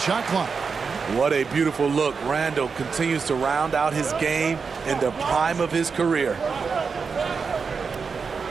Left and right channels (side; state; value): left; quieter; 5.3 dB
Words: clock. What a beautiful look. Randall continues to round out his game in the prime of his career.